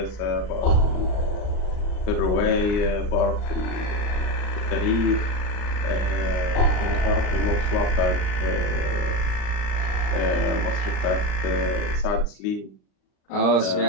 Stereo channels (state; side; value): late; right; 39 ms